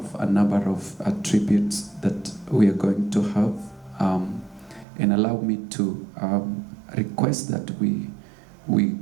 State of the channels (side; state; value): left; drops out; at 4.9 s